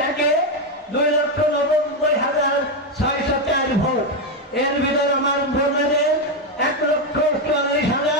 একে 2,90,604 ভোট, এর ভিতরে আমার ভোটারের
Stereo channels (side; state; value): both; normal; correlation 0.06